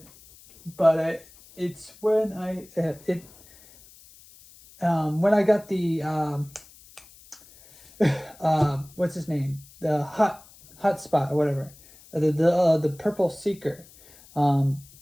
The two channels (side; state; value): left; noise; hiss, 24 dB below the sound